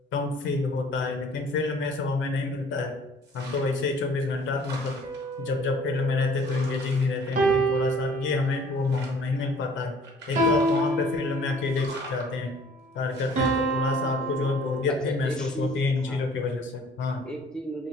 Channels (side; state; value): both; normal; correlation 0.53